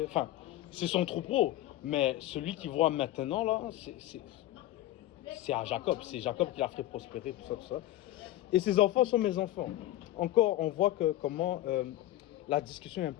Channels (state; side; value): quieter; right; 14.6 dB